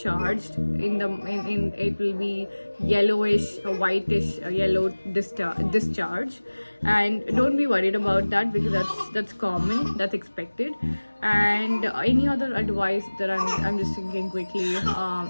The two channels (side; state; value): both; inverted; correlation -1.00